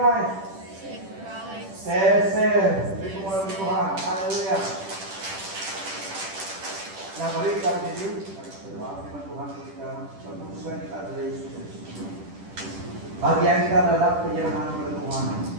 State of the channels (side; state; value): left; late; 10 ms